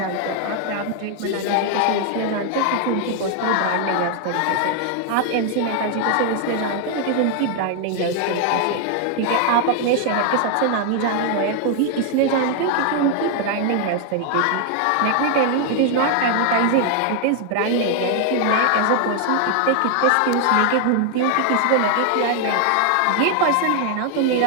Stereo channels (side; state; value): both; different; correlation 0.00